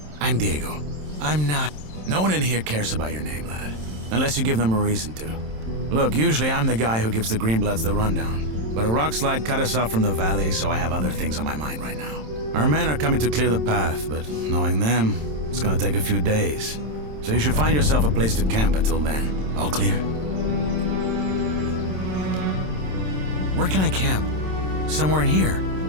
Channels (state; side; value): late; left; 27 ms